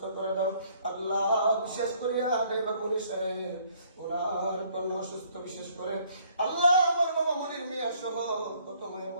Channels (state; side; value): inverted; both; correlation -0.63